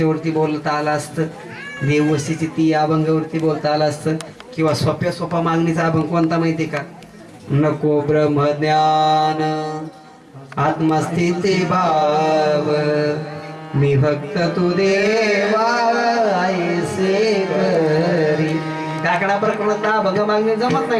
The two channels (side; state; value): both; identical; correlation 1.00